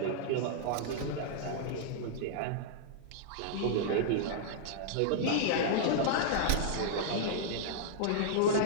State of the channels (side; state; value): both; different; correlation -0.01